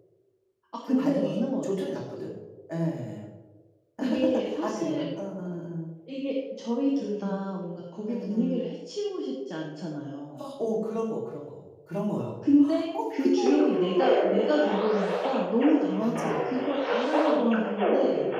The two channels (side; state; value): both; identical; correlation 1.00